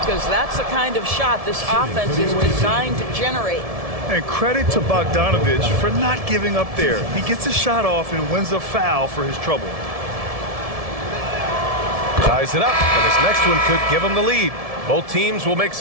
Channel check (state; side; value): late; left; 1.7 ms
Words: that's the kind of shot this offense is designed to generate. And credit to Bogdanovich for not giving up there. He gets a shot off and wins a foul for his trouble. Ties it up, and his next one could give him the lead. Both teams will make